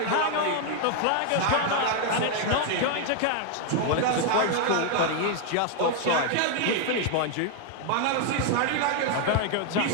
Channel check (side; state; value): both; different; correlation 0.00